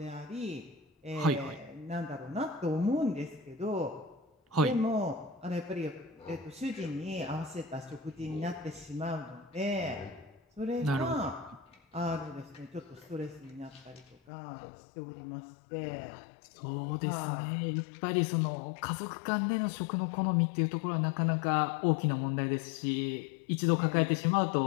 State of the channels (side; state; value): right; drops out; at 14.2 s